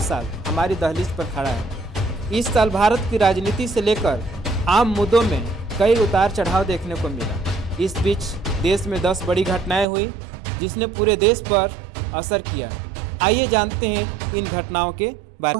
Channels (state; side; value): drops out; left; at 9.9 s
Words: हमारी दहलीज पर खड़ा है। इस साल भारत की राजनीति से लेकर आम मुद्दों में कई उतार चढ़ाव देखने को मिला। इस बीच देश में 10 बड़ी घटनाएं हुई जिसने पूरे देश पर असर किया। आइए जानते हैं इन घटनाओं के बारे